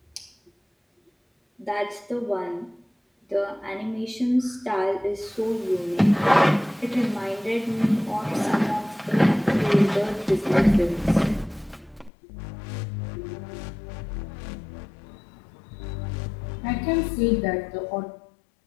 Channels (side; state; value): right; drops out; at 12.1 s